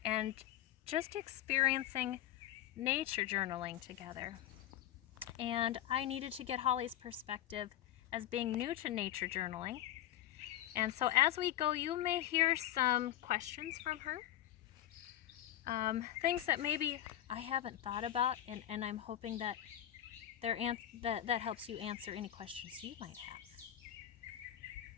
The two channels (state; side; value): quieter; right; 12.4 dB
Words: and just experiencing nature journaling together. And I needed to get Holly's perspective as being new to nature journaling. And so as we go, you may hear some questions from her. Things that maybe I haven't thought about, and I'm hoping that that helps you answer any questions you might have.